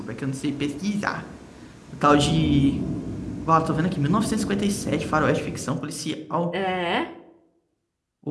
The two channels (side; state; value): both; identical; correlation 1.00